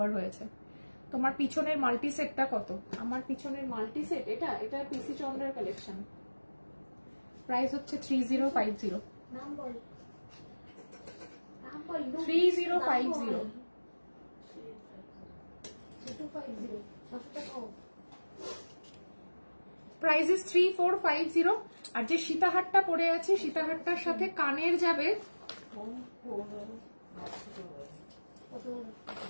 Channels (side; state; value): both; inverted; correlation -1.00